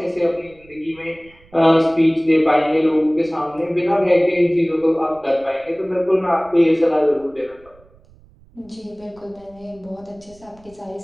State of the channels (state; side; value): noise; right; rumble, 27 dB below the sound